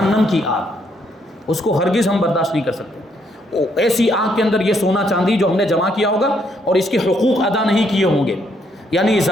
کی آگ، اس کو ہرگز ہم برداشت نہیں کر سکتے. ایسی آگ کے اندر یہ سونا چاندی جو ہم نے جمع کیا ہوگا اور اس کے حقوق ادا نہیں کیے ہوں گے، یعنی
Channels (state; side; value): normal; both; correlation 0.72